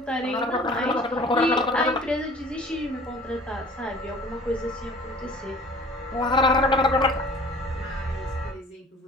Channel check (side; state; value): both; normal; correlation 0.47